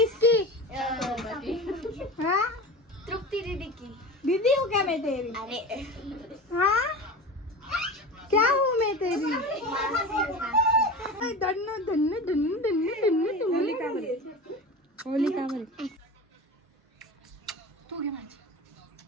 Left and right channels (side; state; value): both; normal; correlation 0.31